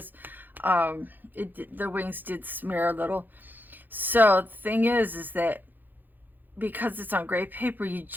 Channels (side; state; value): left; late; 0.088 ms